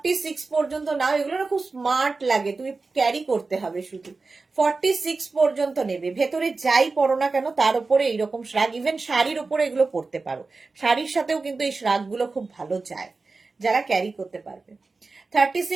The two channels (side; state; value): left; quieter; 3.9 dB